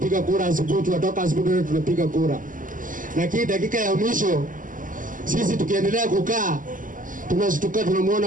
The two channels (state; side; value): late; left; 0.38 ms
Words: kura asubuhi, tunatoka asubuhi tunapiga kura. Lakini dakika ya mwisho sisi tukiendelea kukaa tunashtuka